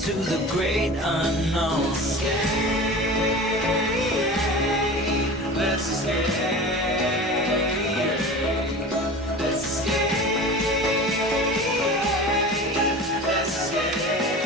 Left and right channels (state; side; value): normal; both; correlation 0.35